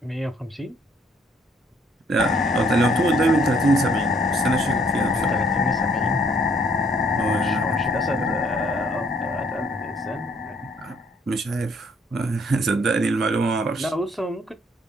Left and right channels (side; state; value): both; normal; correlation 0.64